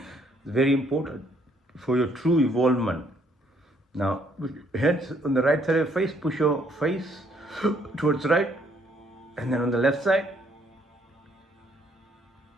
very important for your true evolvement. Now, heads on the right side of your face, push your face towards right. And then on the left side,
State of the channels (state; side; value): normal; both; correlation 0.67